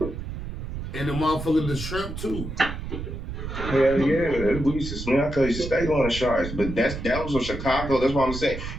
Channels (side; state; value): right; noise; rumble, 7 dB below the sound